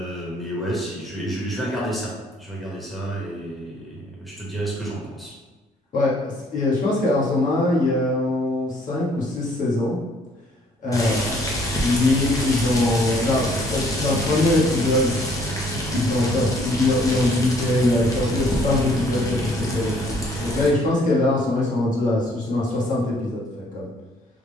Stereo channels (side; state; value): both; normal; correlation 0.62